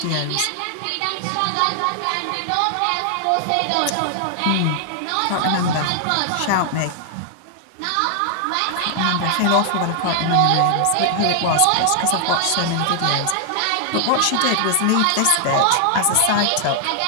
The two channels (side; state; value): both; different; correlation 0.00